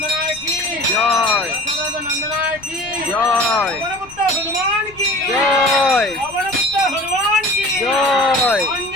কি जय দশরথ নন্দনায় কি जय পবনপুত্র হনুমান কি जय পবনপুত্র হনুমান কি जय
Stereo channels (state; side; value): noise; left; rumble, 23 dB below the sound